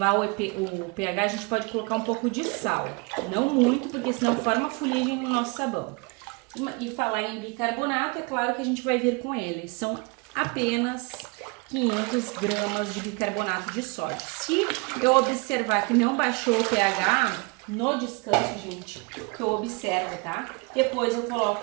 o pH, a gente pode colocar um pouco de sal. Não muito, porque senão forma fuligem no nosso sabão. E falar em bicarbonato, é claro que a gente vai vir com ele. São apenas 500 gramas de bicarbonato de sódio. Se eu observar que não baixou o pH no descanso, gente, que eu observo, tá? Depois eu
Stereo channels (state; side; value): quieter; left; 29.8 dB